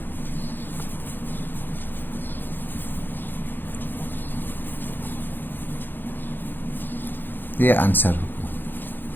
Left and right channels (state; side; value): late; right; 0.094 ms